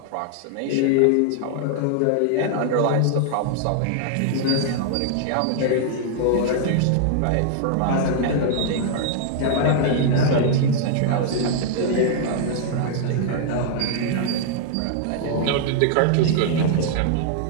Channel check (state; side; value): different; both; correlation -0.01